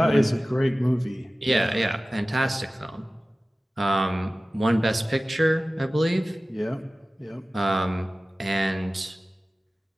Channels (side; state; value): both; normal; correlation 0.96